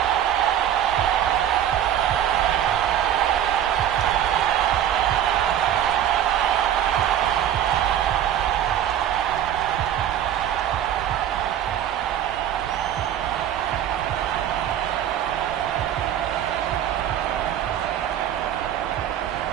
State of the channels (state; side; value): quieter; left; 10.5 dB